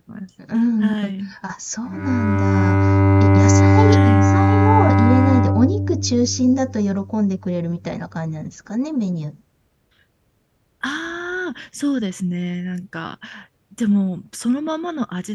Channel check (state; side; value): identical; both; correlation 1.00